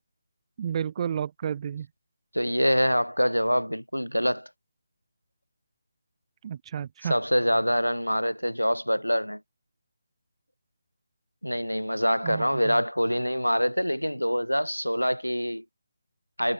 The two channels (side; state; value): both; inverted; correlation -0.98